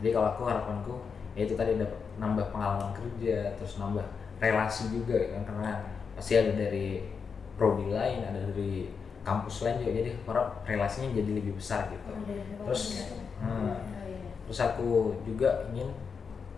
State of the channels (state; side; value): quieter; right; 5.8 dB